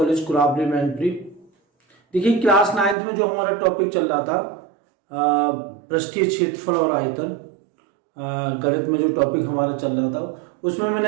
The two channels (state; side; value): drops out; left; at 3.0 s